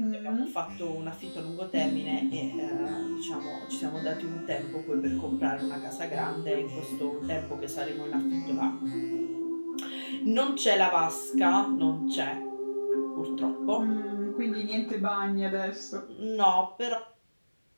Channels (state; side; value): inverted; both; correlation -1.00